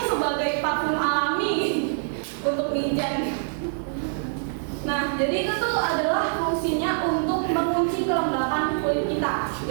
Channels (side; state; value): left; silent; digital silence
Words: sebagai parfum alami untuk mijan. Nah, jadi itu tuh adalah fungsinya untuk mengunci kelembapan kulit kita.